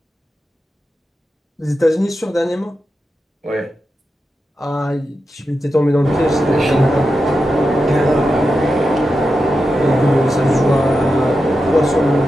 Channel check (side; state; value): both; normal; correlation 0.89